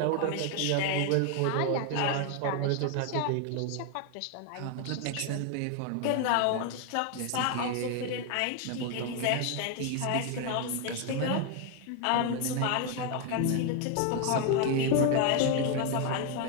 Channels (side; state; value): both; different; correlation 0.01